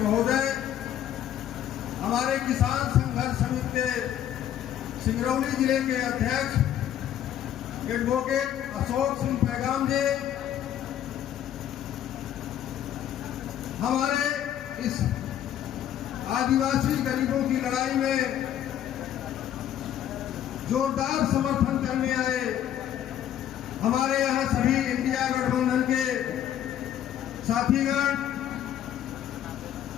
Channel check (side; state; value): right; quieter; 10.8 dB